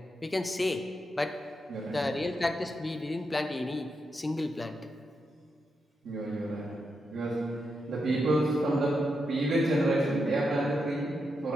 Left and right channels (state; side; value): normal; both; correlation 0.85